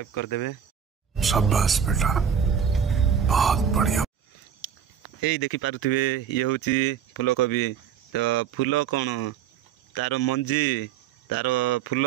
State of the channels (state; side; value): quieter; left; 8.0 dB